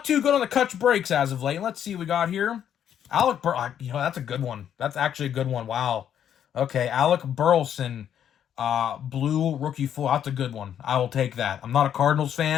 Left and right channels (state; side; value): quieter; right; 9.5 dB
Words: too good on the Kutch breaks as of late. Let's see what we got here. Alec that's a good one. That's actually a good one. Wow. Okay, Alec Burleson, blue rookie full. That's a good one. I will take that. I'm not a Cardinals